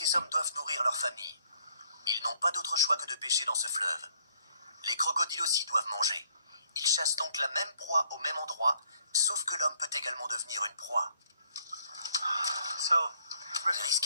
hommes doivent nourrir leur famille. Ils n'ont pas d'autre choix que de pêcher dans ce fleuve. Les crocodiles aussi doivent manger. Ils chassent donc la même proie au même endroit, sauf que l'homme peut également devenir une proie.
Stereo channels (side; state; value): both; inverted; correlation -0.66